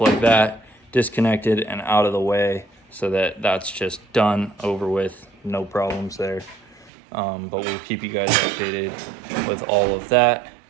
like that, disconnected and out of the way, so that that's just done, over with, no problems there. But we'll keep you guys updated with all of that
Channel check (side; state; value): left; drops out; at 6.9 s